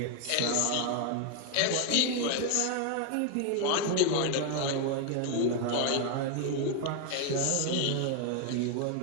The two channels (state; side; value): different; both; correlation 0.01